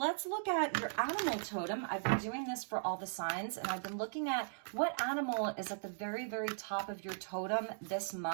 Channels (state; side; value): silent; left; digital silence